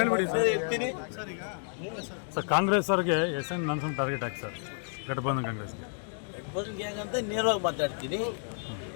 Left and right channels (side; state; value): right; silent; 57 dB below the other